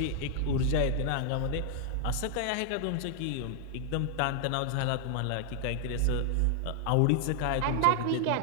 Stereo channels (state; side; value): different; both; correlation 0.00